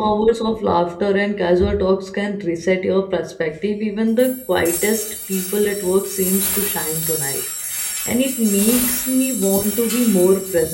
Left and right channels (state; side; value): identical; both; correlation 1.00